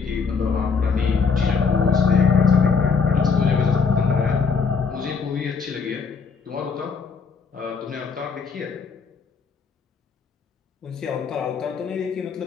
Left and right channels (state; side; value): quieter; right; 5.4 dB